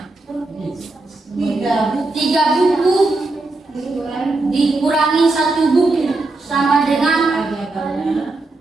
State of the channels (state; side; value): quieter; left; 3.2 dB